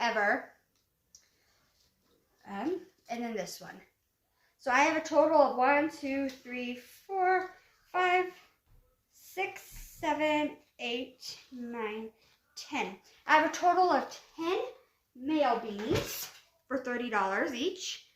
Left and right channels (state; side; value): identical; both; correlation 1.00